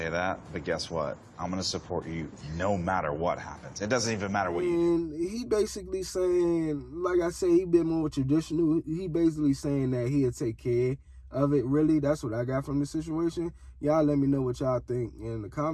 that, but guess what? I'm going to support you no matter what happens. It doesn't even matter what you do. And he basically saying, like I said, he been more traditional. He basically saying that he'll take care of it, really. That's what I got from the situation. Y'all let me know what y'all think in the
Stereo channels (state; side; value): identical; both; correlation 1.00